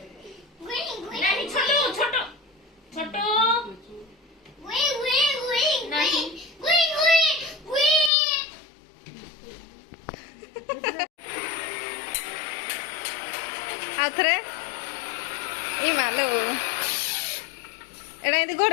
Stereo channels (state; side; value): drops out; right; at 8.1 s